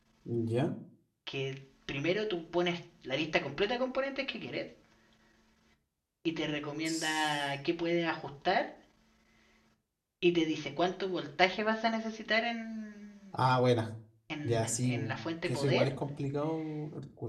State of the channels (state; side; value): identical; both; correlation 1.00